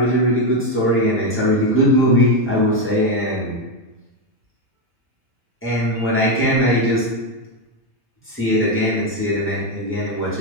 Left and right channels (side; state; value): both; normal; correlation 0.07